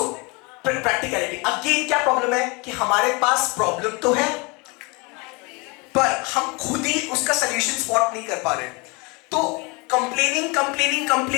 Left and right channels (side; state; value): right; quieter; 28.4 dB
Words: practicality again, क्या प्रॉब्लम है कि हमारे पास प्रॉब्लम तो है पर हम खुद ही उसका सॉल्यूशन स्पॉट नहीं कर पा रहे। तो